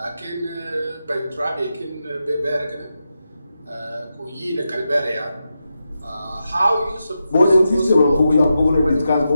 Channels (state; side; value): inverted; both; correlation -0.88